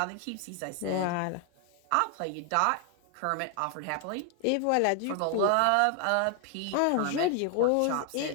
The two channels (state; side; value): different; both; correlation 0.00